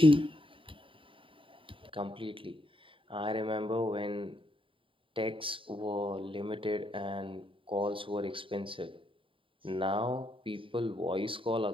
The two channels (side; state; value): left; late; 0.25 ms